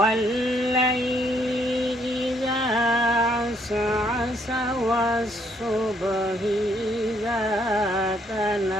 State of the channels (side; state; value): both; normal; correlation 0.69